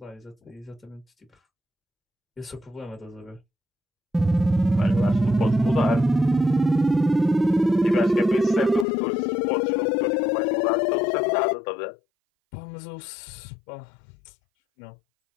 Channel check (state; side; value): drops out; right; at 8.8 s